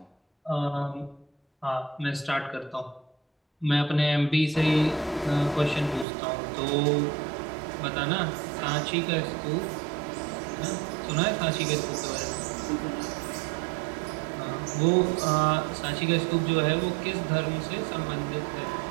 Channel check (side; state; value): left; drops out; at 6.1 s